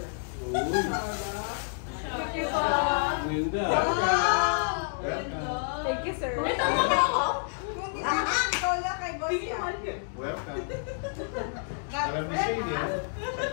Uy. Thank you po. Ganda. Welcome. Thank you, sir. Ito mo ba ako? Ikaw lang kay boss yan. Welcome. Alam ni Shane yan.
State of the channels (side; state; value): right; silent; digital silence